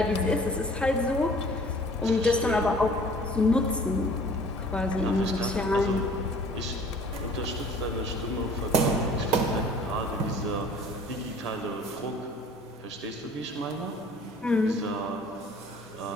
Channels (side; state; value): both; normal; correlation 0.50